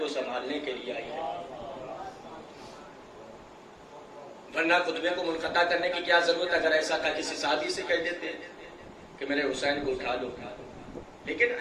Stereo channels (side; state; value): both; identical; correlation 1.00